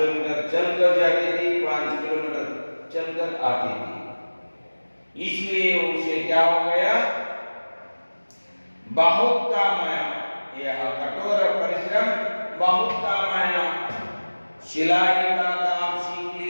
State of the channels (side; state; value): both; inverted; correlation -1.00